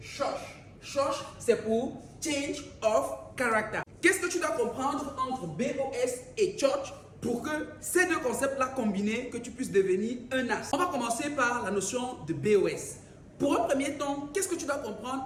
SHOSH. SHOSH, c'est pour Change of Character. Qu'est-ce que tu dois comprendre entre BOS et SHOSH pour que ces deux concepts-là combinés, que tu puisses devenir un as? On va commencer par la notion de BOS. Pour un premier temps, qu'est-ce que tu dois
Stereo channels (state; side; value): identical; both; correlation 1.00